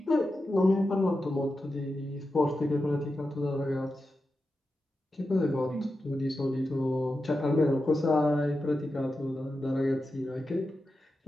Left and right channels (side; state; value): both; normal; correlation 0.90